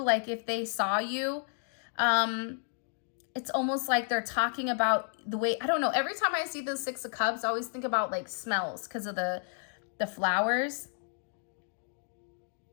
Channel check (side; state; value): right; silent; 57 dB below the other